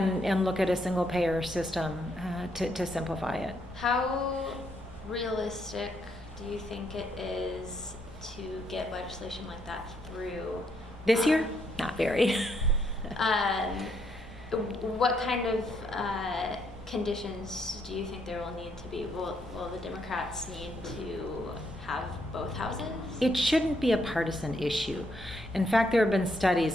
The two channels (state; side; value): normal; both; correlation 0.74